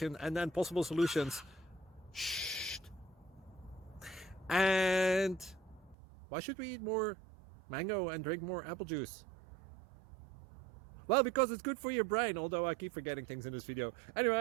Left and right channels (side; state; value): left; drops out; at 6.0 s